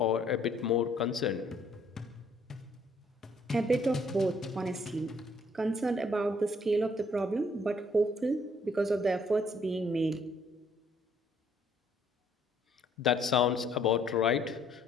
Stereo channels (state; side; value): normal; both; correlation 0.64